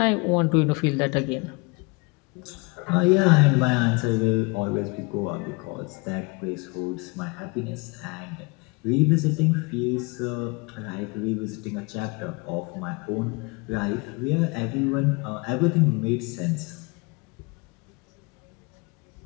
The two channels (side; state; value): right; quieter; 28.0 dB